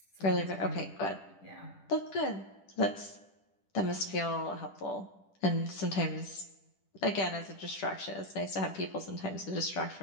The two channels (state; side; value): late; right; 10 ms